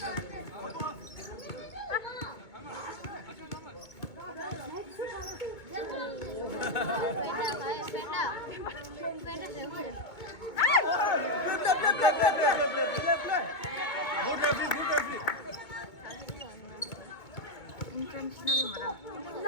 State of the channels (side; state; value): right; late; 2.2 ms